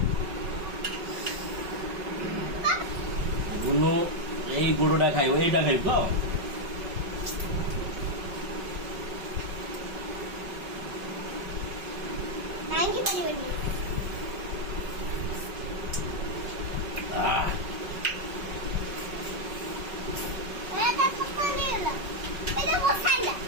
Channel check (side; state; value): left; late; 5.3 ms